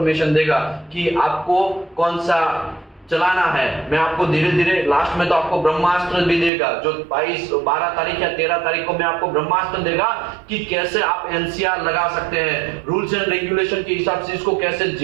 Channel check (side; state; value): left; drops out; at 6.5 s